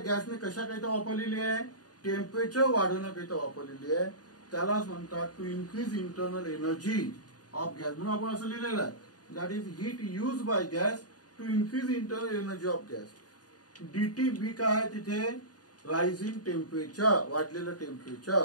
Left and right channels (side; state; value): right; late; 0.68 ms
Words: गॅसने कशाकरिता वापरलेली आहे? टेम्परेचर वाढवण्याकरिता वापरलेली आहे. त्यालाच म्हणतात to increase internal energy of gas. म्हणून आपण असं लिहिलेलं आहे, that is heat use by gas to increase internal energy of gas. DT B काय आहे तिथे? रायझिंग टेम्परेचर, वाढलेलं